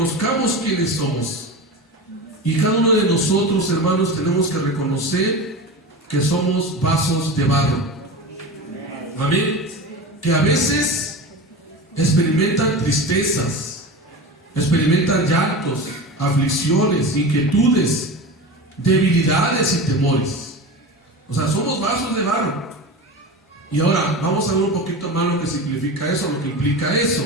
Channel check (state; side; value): normal; both; correlation 0.28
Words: quiénes somos. Y cada uno de nosotros, hermanos, tenemos que reconocer que somos vasos de barro. Amén. Que a veces experimentan tristezas, experimentan llantos, aflicciones, inquietudes, debilidades y temores. O sea, somos vasos de barro. Y ahora vamos a ver un poquito más lo que significa eso, lo que implica eso.